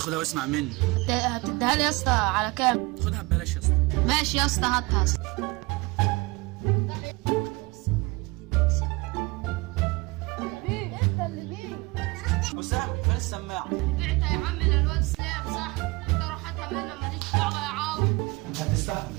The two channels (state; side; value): quieter; left; 24.1 dB